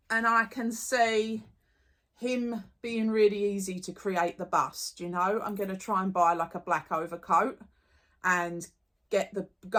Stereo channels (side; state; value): both; identical; correlation 1.00